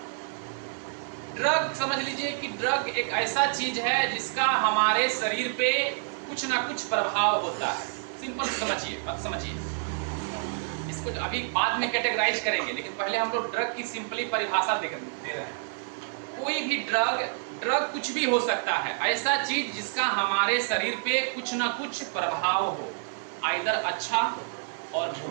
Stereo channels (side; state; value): left; silent; 57 dB below the other